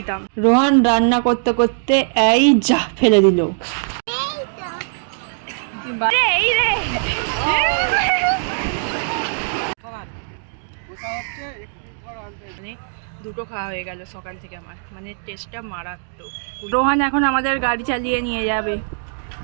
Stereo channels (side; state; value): left; silent; digital silence